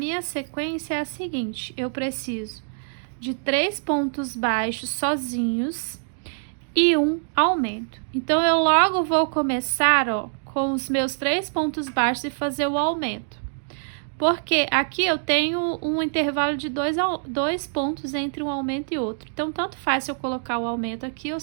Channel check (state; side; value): silent; left; digital silence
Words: sequência é a seguinte, eu preciso de 3 pontos baixos sozinhos e um aumento. Então, eu logo vou começar, ó, com os meus 3 pontos baixos e fazer o aumento. Porque aqui eu tenho um intervalo de 2 pontos entre um aumento e outro. Então, tanto faz se eu colocar o aumento aqui ou